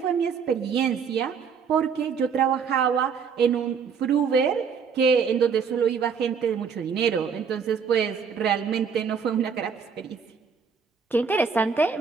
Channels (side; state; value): left; quieter; 6.3 dB